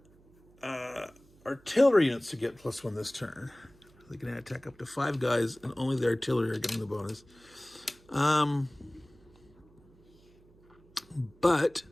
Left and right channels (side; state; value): right; noise; hum, 28 dB below the sound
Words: artillery units to get +1 this turn. They can attack up to 5 guys, and only the artillery are getting the bonus. But